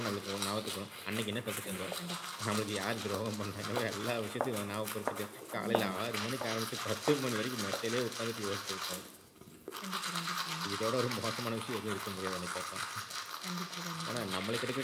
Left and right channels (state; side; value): identical; both; correlation 1.00